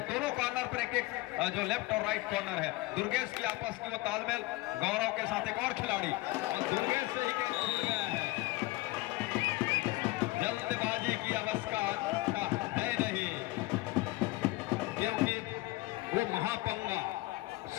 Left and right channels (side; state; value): right; quieter; 20.3 dB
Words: दोनों कॉर्नर पर एक जो लेफ्ट और राइट कॉर्नर है दुर्गेश की आपस की वो तालमेल। गौरव के साथ एक और खिलाड़ी और दुर्गेश से ही कैच छूट गया है। जल्दबाजी की अवस्था है नहीं क्योंकि वो महापंगा